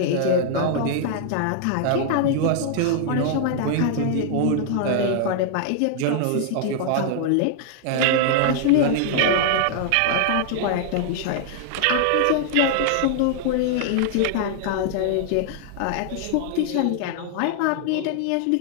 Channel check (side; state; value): both; different; correlation -0.01